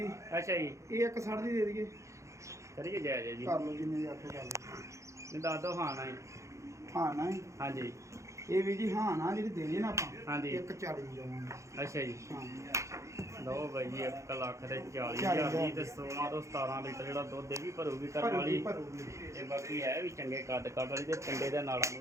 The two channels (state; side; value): late; left; 0.15 ms